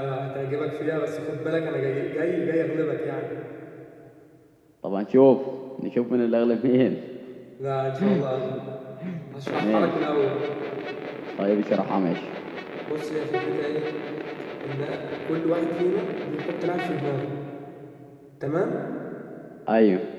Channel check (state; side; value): identical; both; correlation 1.00